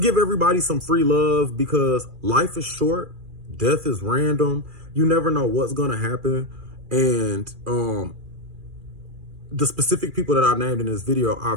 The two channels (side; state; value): left; late; 2.4 ms